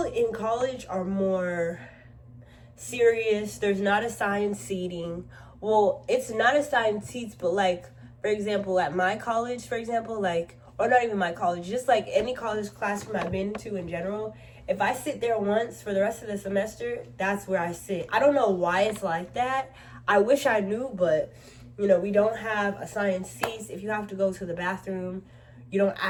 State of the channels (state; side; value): identical; both; correlation 1.00